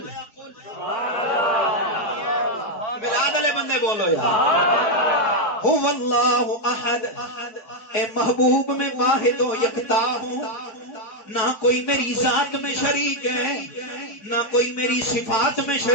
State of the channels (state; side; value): late; right; 4.8 ms